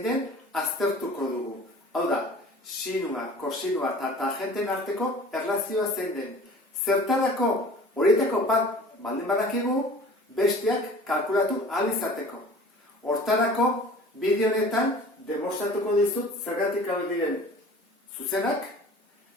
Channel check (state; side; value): normal; both; correlation 0.45